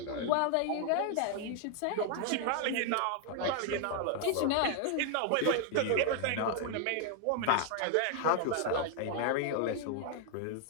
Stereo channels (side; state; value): both; different; correlation 0.00